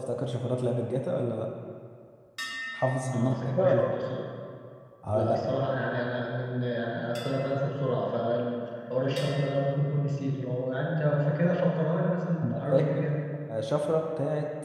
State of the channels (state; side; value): identical; both; correlation 1.00